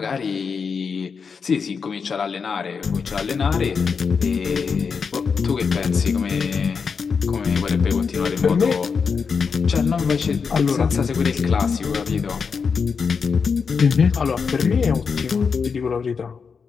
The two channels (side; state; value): right; quieter; 5.7 dB